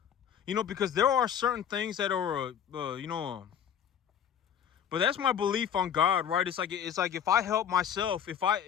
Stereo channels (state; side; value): quieter; right; 8.8 dB